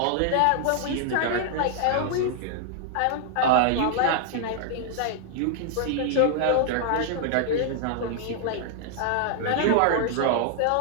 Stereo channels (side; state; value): both; different; correlation -0.01